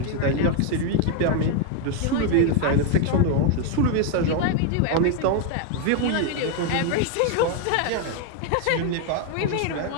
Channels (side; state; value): both; different; correlation 0.01